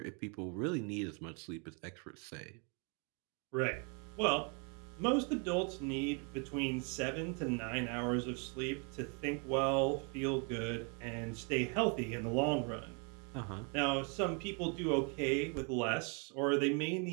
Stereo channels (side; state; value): left; quieter; 36.4 dB